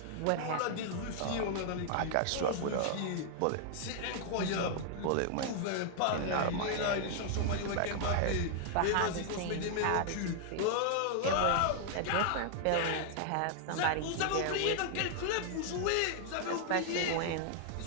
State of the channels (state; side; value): different; both; correlation 0.00